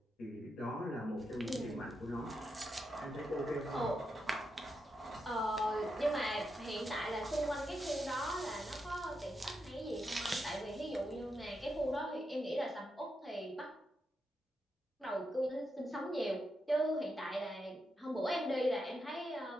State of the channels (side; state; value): both; normal; correlation 0.85